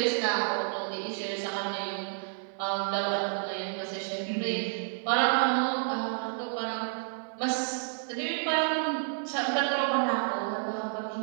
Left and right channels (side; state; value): left; silent; 58 dB below the other